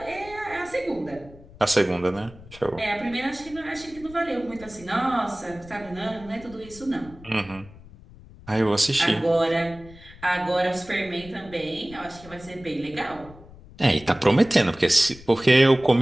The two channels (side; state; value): left; noise; rumble, 20 dB below the sound